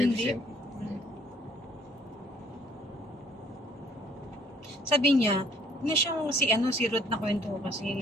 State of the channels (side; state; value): both; normal; correlation 0.60